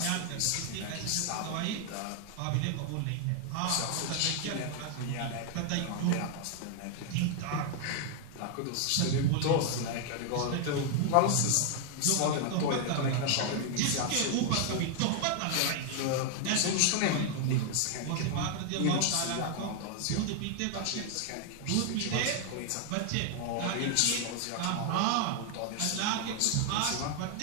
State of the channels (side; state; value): both; different; correlation 0.00